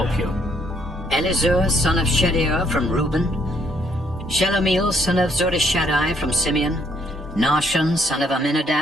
you. Elizur, son of Shedeur from Reuben, Shelomiel, son of Zurishaddai from Simeon, Nahshon, son of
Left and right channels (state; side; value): normal; both; correlation 0.69